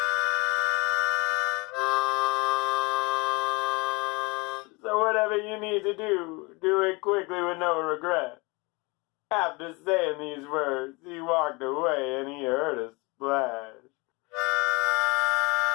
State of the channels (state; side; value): quieter; right; 26.6 dB